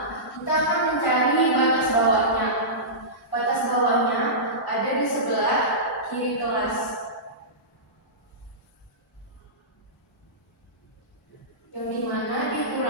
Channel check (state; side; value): normal; both; correlation -0.18